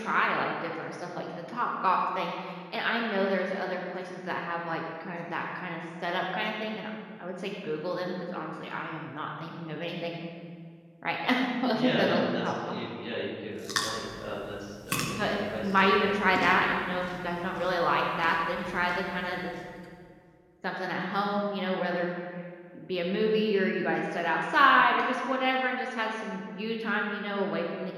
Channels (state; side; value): identical; both; correlation 1.00